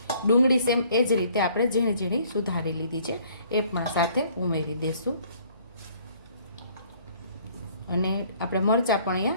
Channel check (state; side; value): inverted; both; correlation -0.59